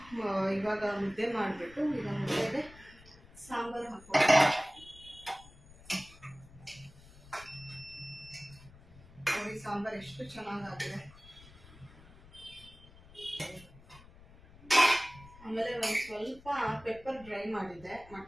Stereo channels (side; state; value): left; noise; rumble, 22 dB below the sound